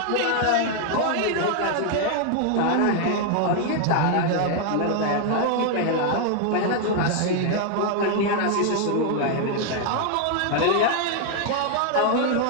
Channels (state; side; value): different; both; correlation 0.00